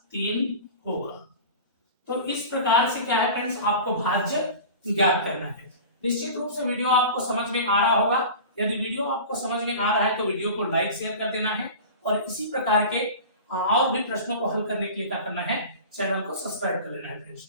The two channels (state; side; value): inverted; both; correlation -0.35